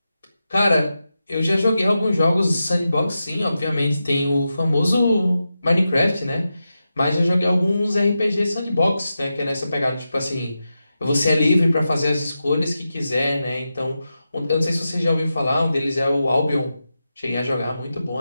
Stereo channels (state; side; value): inverted; both; correlation -0.90